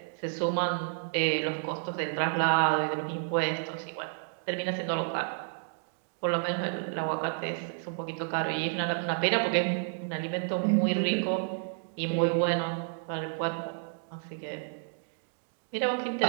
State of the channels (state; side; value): silent; left; digital silence